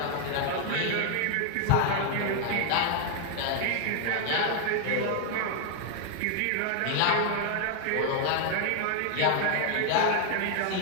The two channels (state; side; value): different; both; correlation 0.00